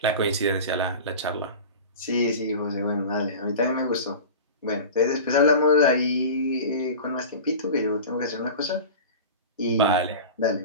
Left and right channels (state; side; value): inverted; both; correlation -0.32